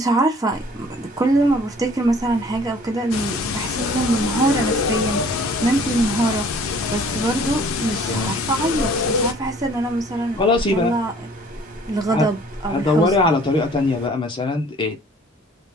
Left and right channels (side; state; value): both; normal; correlation 0.53